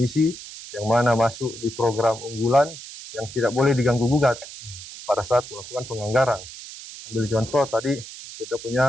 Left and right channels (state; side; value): noise; right; hiss, 13 dB below the sound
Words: yang mana masuk di program unggulan, yang tidak boleh diganggu-gugat pada saat melakukan penganggaran. Ambil contoh tadi kita